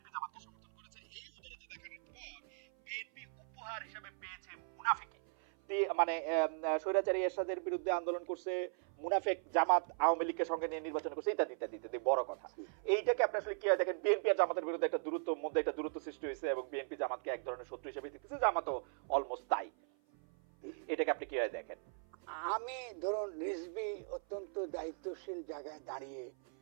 জামাতকে সমর্থন করেছে। এই উদারতা দেখানোর পর বিএনপি উপহার হিসেবে পেয়েছে মুনাফিকি। মানে স্বৈরাচারী এরশাদের বিরুদ্ধে আন্দোলন করছে, মুনাফেক জামাত আওয়ামী লীগকে সঙ্গে নিয়ে নির্বাচন করছে, ইত্যাদি ইত্যাদি ইত্যাদি। বড় কথা, এইটাকে আপনি আসলে কি হয় দেখেন, বিএনপি আর জামাতের বিরুদ্ধে একটা দূরত্ব মধ্যে একটা দূরত্ব সৃষ্টি হয়েছে এবং বিএনপি জামাতকে এক ধরনের শত্রু হিসেবে দেখতেছে, জামাতও অলমোস্ট তাই। এটাকে আপনি কি হয় দেখেন? আমি ধরুন রিজভী অত্যন্ত দায়িত্বশীল জায়গায় দাঁড়িয়ে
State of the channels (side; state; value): left; silent; 52 dB below the other